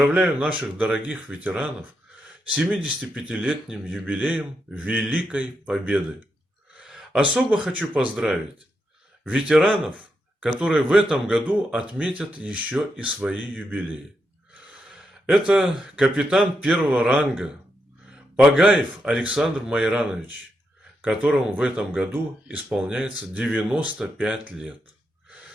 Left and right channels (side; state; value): both; normal; correlation 0.83